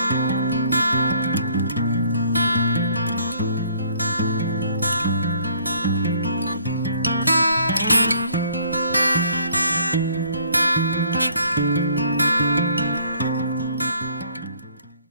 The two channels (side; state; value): both; inverted; correlation -0.61